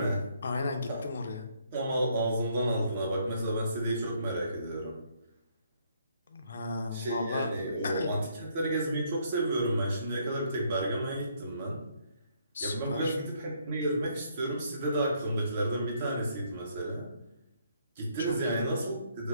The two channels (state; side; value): inverted; both; correlation -0.69